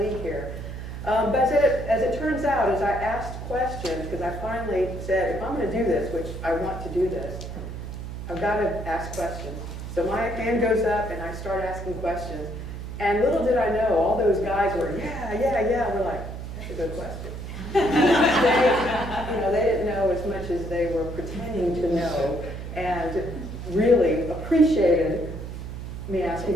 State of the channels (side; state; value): right; noise; hum, 8 dB below the sound